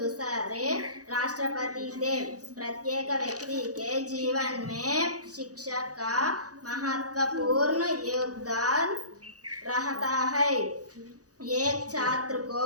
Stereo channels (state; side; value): late; left; 0.67 ms